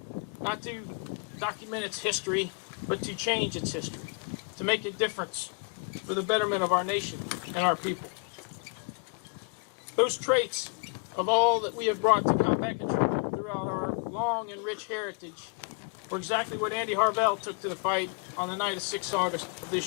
not to document its history, but to change its history, to make a difference for the betterment of our nation and our people. Those traits of all that we have brought to combat control throughout our long and rich heritage were exactly what Andy Harvell took to the fight on the night of 6 August of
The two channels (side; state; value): right; quieter; 37.5 dB